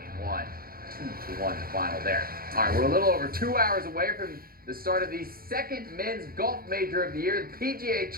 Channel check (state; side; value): late; left; 0.43 ms